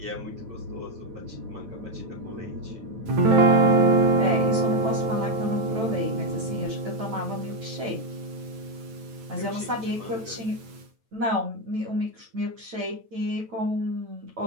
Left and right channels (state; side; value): late; left; 9.1 ms